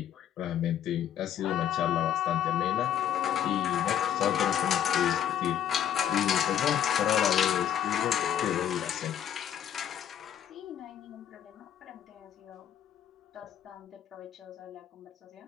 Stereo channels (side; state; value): right; quieter; 10.0 dB